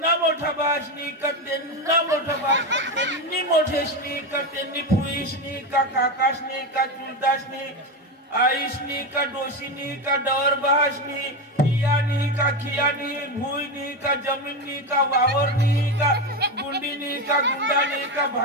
मोठा बहाशनी का त्यांना मोठा बहाश त्यांनी मोठेशनी का त्यांनी फुईशनी का काकाशनी का चुलताशनी आईशनी का डोशीनी का डवर बहाशनी कियानी का खियानी भुईनी का जमीननी का वावरनी का गुंडीनी का गुंडानी का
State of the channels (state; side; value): normal; both; correlation 0.14